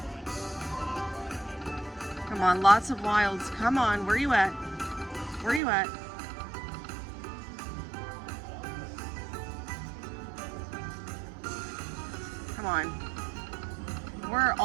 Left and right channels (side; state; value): left; drops out; at 5.6 s